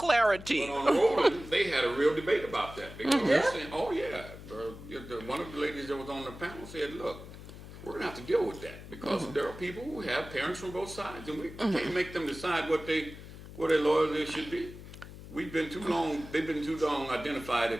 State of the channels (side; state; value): left; noise; hum, 14 dB below the sound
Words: But on Roland, they had a real debate about that because they're saying, "Oh yeah," one of the ladies that was on the panel said, "Look, we're gonna have to deal with that because there are people who have parents from both sides, and we can't make them decide what their loyalty should be. We've been too long. They've been too long identified